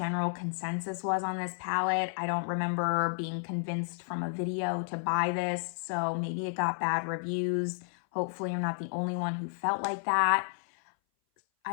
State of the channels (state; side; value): silent; right; 57 dB below the other